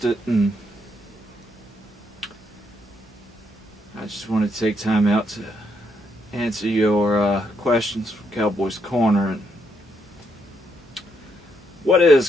and I just wanted to take time out to answer your questions from Cowboy's Corner. And what is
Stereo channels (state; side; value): normal; both; correlation 0.76